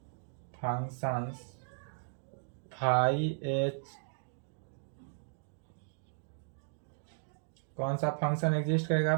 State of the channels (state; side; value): silent; left; digital silence